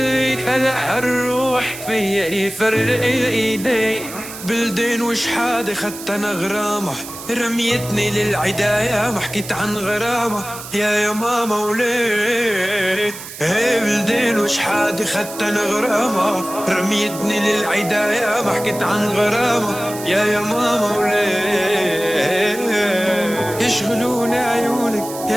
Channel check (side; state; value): right; noise; hiss, 12 dB below the sound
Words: هلا هالروح فيا يفرق ايدي بلدين وش حادي خدت انا غرامة رميتني للعداية ما حكيت عن غرامة يا ماما وليه بلدين وش حادي خدت انا غرامة رميتني للعداية ما حكيت عن غرامة يا ماما وليه يشغلوني عيونك